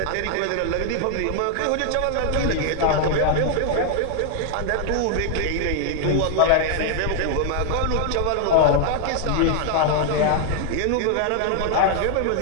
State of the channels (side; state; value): both; different; correlation 0.00